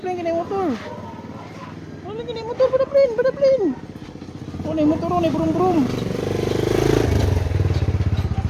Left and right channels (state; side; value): identical; both; correlation 1.00